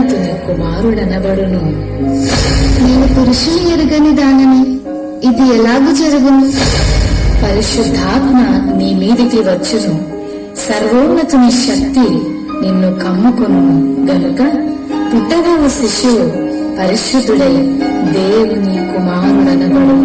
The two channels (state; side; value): identical; both; correlation 1.00